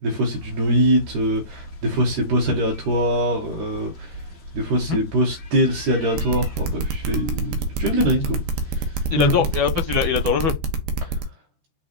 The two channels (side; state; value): left; late; 14 ms